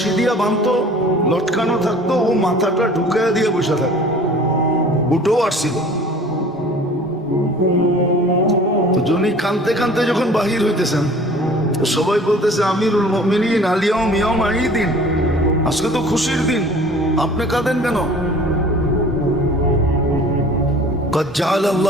দিয়া বাঁধতো, লটকানো থাকতো, ও মাথাটা ঢুকাইয়া দিয়ে বসে থাকতো। উঠেও আসছিল। তো যিনি কানতে কানতে যখন বাহির হইতেছেন, সবাই বলতেছে আমিরুল মুমিনিন আলিয়াউম ইয়াউম ঈদিন, আজকে তো খুশির দিন, আপনি কাঁদেন কেন? قد جعل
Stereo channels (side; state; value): both; normal; correlation 0.47